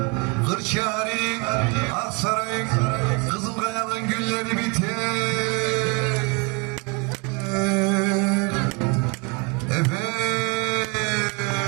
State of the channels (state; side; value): quieter; left; 31.4 dB